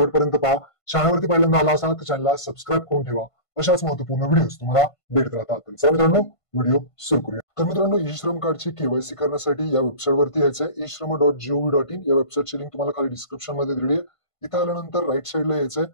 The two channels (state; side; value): late; right; 1.5 ms